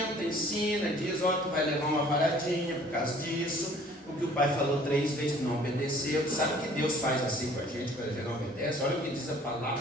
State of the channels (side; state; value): both; normal; correlation 0.54